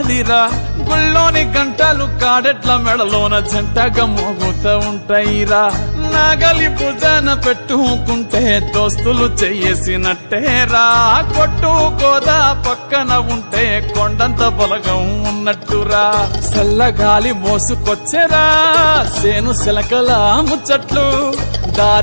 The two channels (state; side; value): inverted; both; correlation -1.00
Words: గుళ్ళోని గంటలు కాడెట్ల మెడలోన జంటగా మోగుతూ ఉంటాయిరా నాగలి భుజాన పెట్టుకుంటే దోస్తులు చెయ్యేసినట్టేరా కొట్టు గోదా పక్కన ఉంటే కొండంత బలగం ఉన్నట్టురా చల్లగాలి మోసుకొచ్చెరా సేను శిలకల ముచ్చట్లు